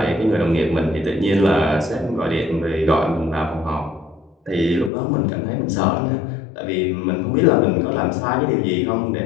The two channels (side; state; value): right; drops out; at 4.9 s